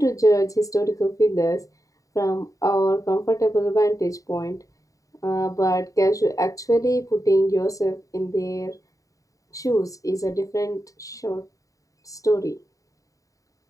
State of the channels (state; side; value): late; right; 0.16 ms